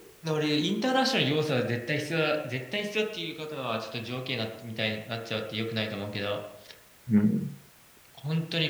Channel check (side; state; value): both; identical; correlation 1.00